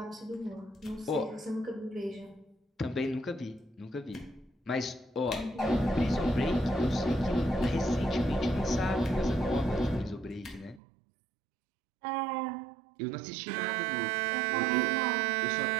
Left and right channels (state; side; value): drops out; left; at 10.8 s